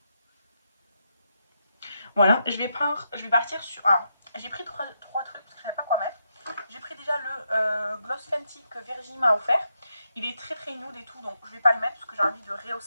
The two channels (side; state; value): both; inverted; correlation -0.82